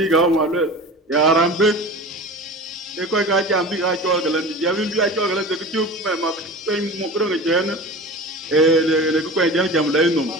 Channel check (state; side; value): normal; both; correlation 0.34